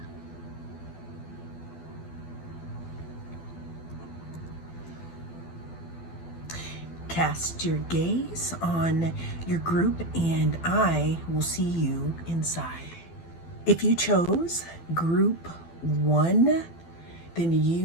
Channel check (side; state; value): right; late; 12 ms